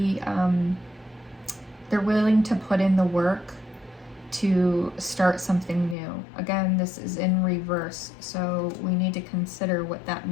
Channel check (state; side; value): drops out; right; at 6.0 s